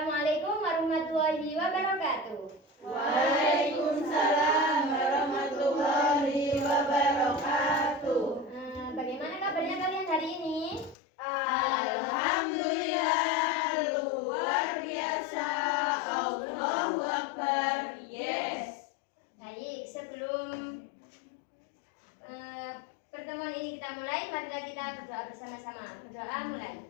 warahmatullahi wabarakatuh. Waalaikumsalam warahmatullahi wabarakatuh. Bagaimana kabarnya kalian hari ini? Alhamdulillah, luar biasa. Allahu Akbar. Yes. Baik, sebelum pertemuan ini kita mulai, marilah kita berdoa bersama-sama. Berdoa mulai.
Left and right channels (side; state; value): right; drops out; at 11.0 s